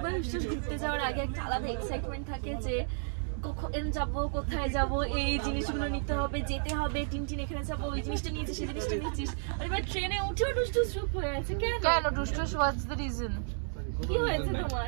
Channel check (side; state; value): left; silent; digital silence